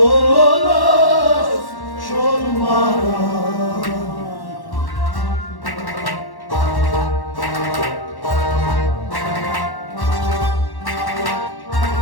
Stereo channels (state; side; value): late; right; 1.1 ms